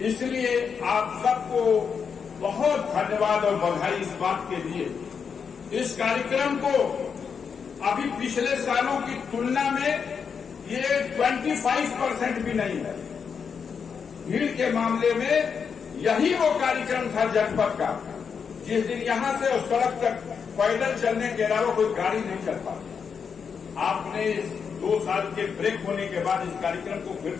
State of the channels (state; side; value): quieter; right; 6.4 dB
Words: इसलिए आप सबको बहुत धन्यवाद और बधाई इस बात के लिए। इस कार्यक्रम को अभी पिछले सालों की तुलना में ये 25% भी नहीं है। भीड़ के मामले में यही वो कार्यक्रम था जनपद का जिस दिन यहां से उस सड़क तक पैदल चलने के अलावा कोई गाड़ी नहीं चल पाती। आपने 2 साल के ब्रेक होने के बाद इस कार्यक्रम को फिर